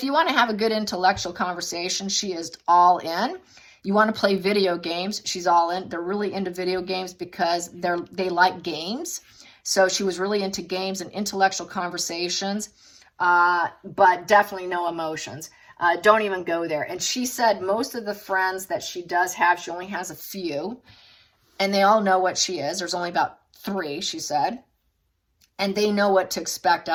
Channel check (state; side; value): identical; both; correlation 1.00